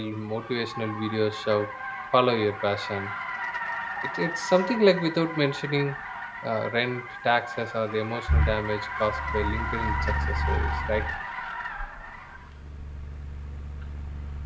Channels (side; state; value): both; identical; correlation 1.00